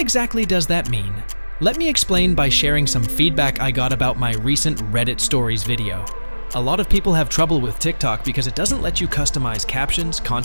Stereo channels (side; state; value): both; inverted; correlation -1.00